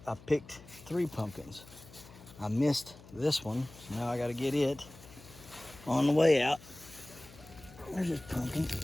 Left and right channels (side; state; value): left; noise; hum, 20 dB below the sound